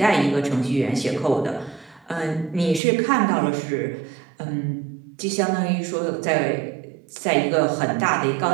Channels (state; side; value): drops out; left; at 2.8 s